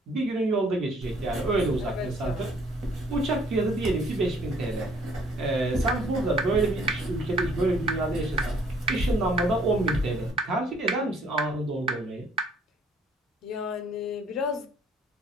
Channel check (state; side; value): normal; both; correlation 0.60